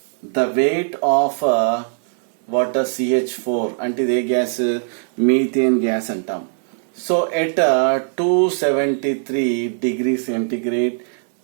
weight of water CH4 అంటే ఇది ఏ గ్యాస్ మీథేన్ గ్యాస్ అంటాం. So at 273 degree centigrade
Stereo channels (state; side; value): silent; left; 63 dB below the other